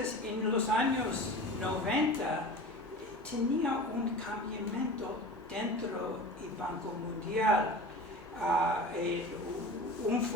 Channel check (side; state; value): both; normal; correlation 0.35